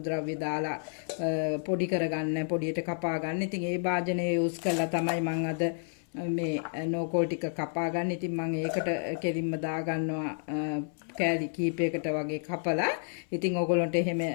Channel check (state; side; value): silent; right; 58 dB below the other